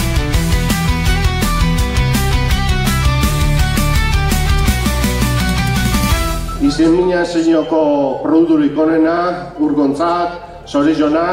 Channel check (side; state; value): both; identical; correlation 1.00